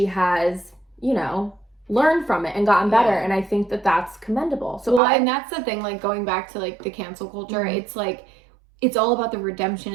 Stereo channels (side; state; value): left; drops out; at 5.0 s